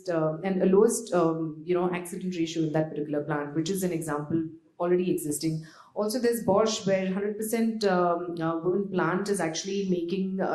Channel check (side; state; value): both; identical; correlation 1.00